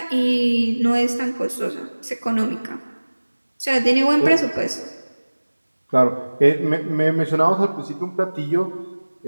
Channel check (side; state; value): both; inverted; correlation -1.00